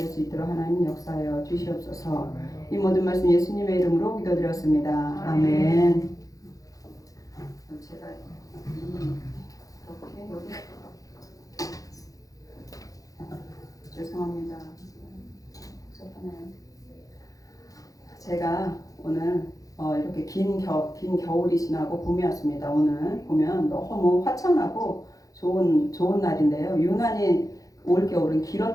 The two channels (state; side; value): late; right; 0.17 ms